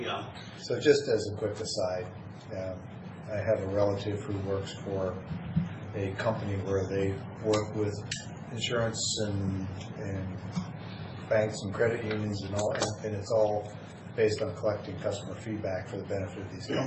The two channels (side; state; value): both; identical; correlation 1.00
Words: So just as a quick aside, I have a relative who works for a company where they work with insurance and banks and credit unions and all, and it's all based on collecting customer feedback for the benefit of these